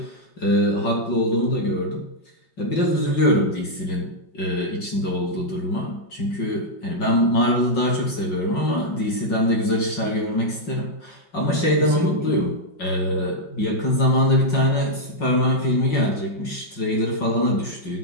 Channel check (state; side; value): late; right; 5.5 ms